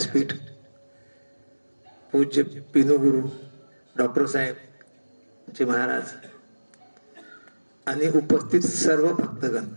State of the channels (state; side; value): inverted; both; correlation -1.00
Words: पूज्य पिनुगुरु डॉक्टर साहेब जी महाराज आणि उपस्थित सर्व भक्तगण,